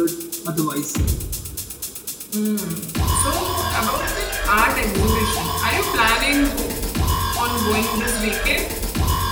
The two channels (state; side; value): identical; both; correlation 1.00